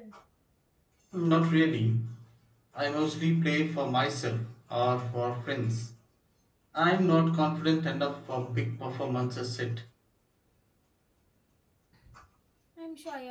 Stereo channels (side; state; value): both; identical; correlation 1.00